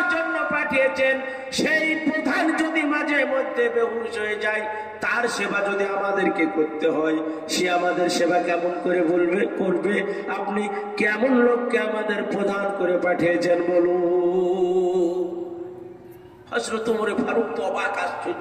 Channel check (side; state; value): both; identical; correlation 1.00